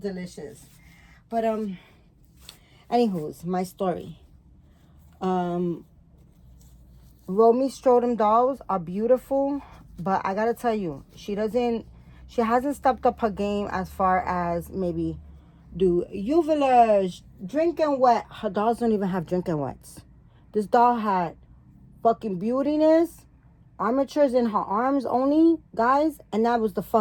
But, anywho's, my story. Romy Strudel dolls are beautiful, but I gotta tell you, she hasn't stepped up her game as far as maybe do uvulage, drinking wet. Her dolls don't even have drinking wets. This doll had fucking beautiness, armatures in her arms only, guys, and that was the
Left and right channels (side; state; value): both; identical; correlation 1.00